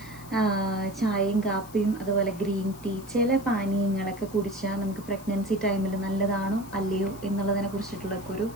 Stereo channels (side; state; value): left; noise; hiss, 20 dB below the sound